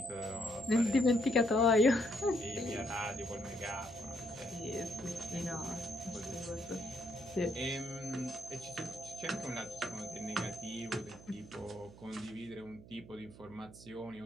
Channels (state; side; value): noise; right; hum, 18 dB below the sound